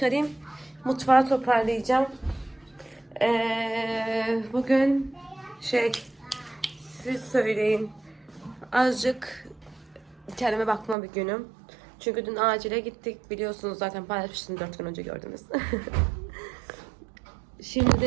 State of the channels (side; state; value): left; drops out; at 11.0 s